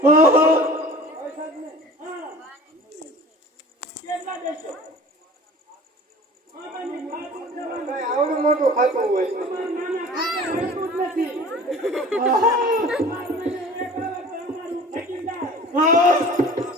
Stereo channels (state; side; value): normal; both; correlation 0.43